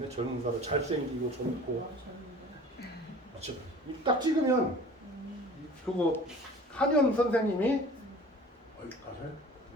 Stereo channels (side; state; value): both; normal; correlation 0.45